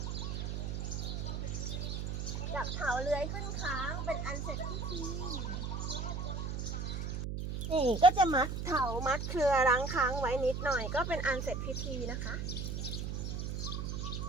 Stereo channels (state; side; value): noise; right; hum, 3 dB below the sound